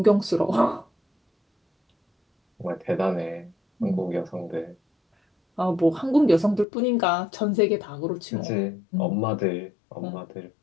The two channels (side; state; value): right; drops out; at 6.7 s